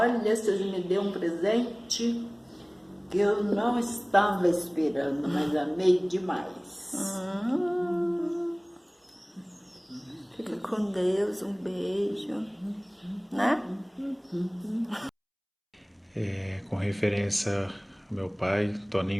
vocês me deu um presente que eu não estava esperando, mas amei demais. Fica com Deus, um beijo, né? Com referência ao meu pai,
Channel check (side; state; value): both; identical; correlation 1.00